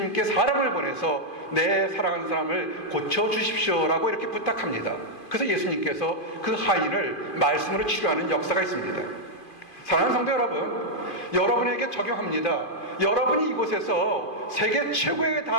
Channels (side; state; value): right; late; 2.5 ms